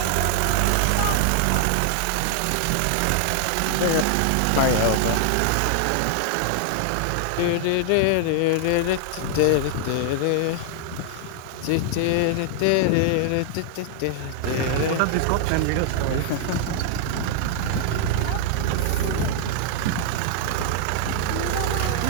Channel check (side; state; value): both; different; correlation -0.01